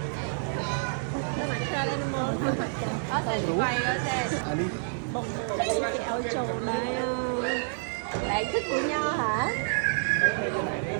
តែមក trail animal អត់តែវាយអត់ទេ à đi បងគេឲ្យចូលដែរឡែកទឹកញ៉ាហ៎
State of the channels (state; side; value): silent; left; digital silence